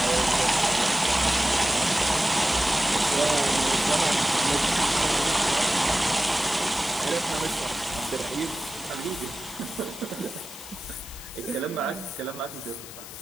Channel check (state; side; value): noise; left; hiss, 14 dB below the sound